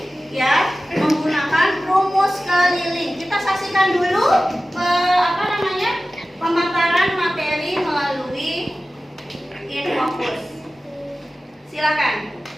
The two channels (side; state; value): both; normal; correlation 0.95